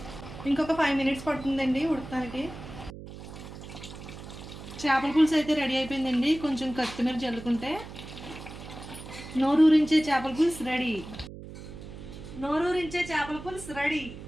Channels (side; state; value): right; noise; hum, 13 dB below the sound